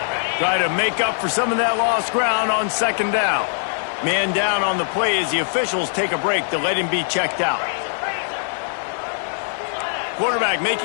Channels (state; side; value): silent; right; digital silence